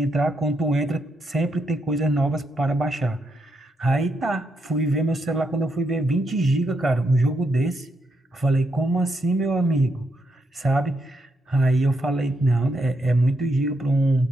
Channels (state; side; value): normal; both; correlation 0.80